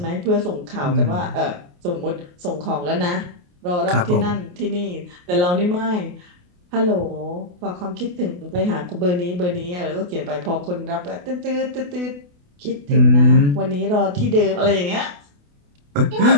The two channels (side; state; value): left; late; 28 ms